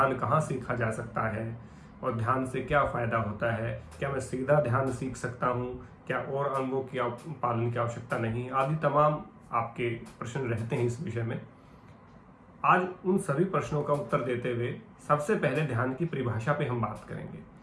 कहाँ सीखा जा सकता है और ध्यान से क्या फायदा होता है, क्या मैं सीधा ध्यान सीख सकता हूँ, क्या और अंगों की पालन की आवश्यकता नहीं, आदि तमाम आपके प्रश्न रहते हैं इस विषय में। आज उन सभी प्रश्नों का उत्तर देते हुए सबसे पहले ध्यान की परिभाषा पे हम बात करेंगे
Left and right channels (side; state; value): both; identical; correlation 1.00